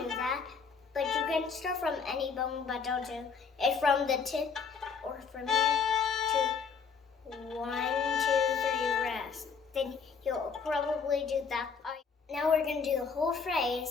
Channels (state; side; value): quieter; right; 5.7 dB